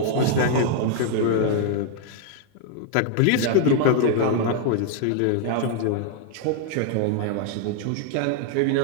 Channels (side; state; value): both; different; correlation -0.01